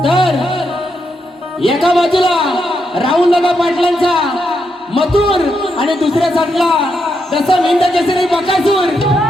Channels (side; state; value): both; normal; correlation 0.82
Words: तर एका बाजूला राहुल दादा पाटलांचा मथुर आणि दुसऱ्या साईडला जसं मिंद केसरी बकासूर.